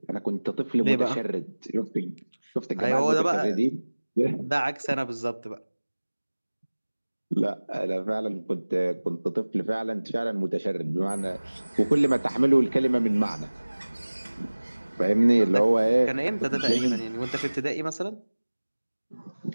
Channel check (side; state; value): both; inverted; correlation -1.00